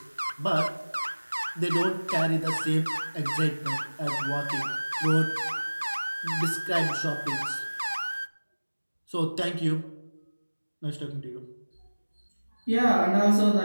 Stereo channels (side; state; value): both; inverted; correlation -1.00